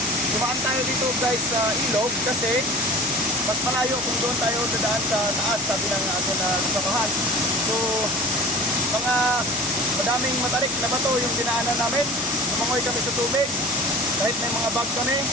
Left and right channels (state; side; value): noise; left; hum, 25 dB below the sound